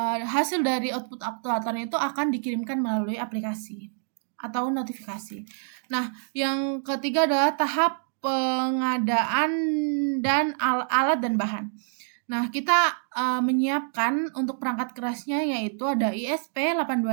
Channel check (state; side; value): silent; left; digital silence